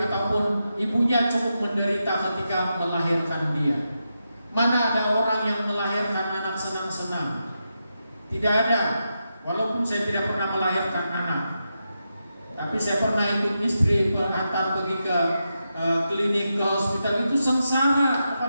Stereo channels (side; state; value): both; inverted; correlation -0.87